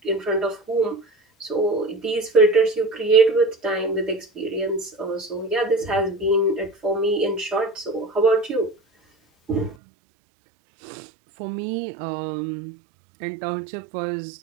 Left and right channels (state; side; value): drops out; left; at 9.8 s